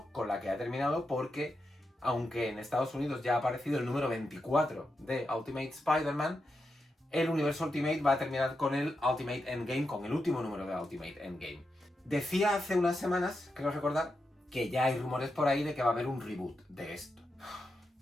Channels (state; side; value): normal; both; correlation 0.87